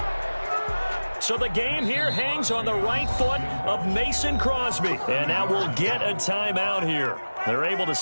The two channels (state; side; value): inverted; both; correlation -1.00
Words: So the game here hangs on the right foot of Mason Crosby. And now we'll get a timeout here. They're able to